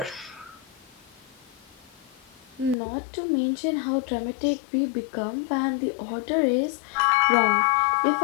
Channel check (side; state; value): right; drops out; at 2.8 s